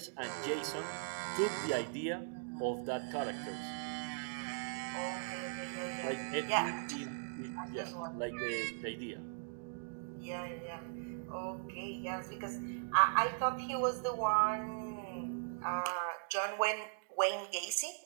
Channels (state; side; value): silent; left; digital silence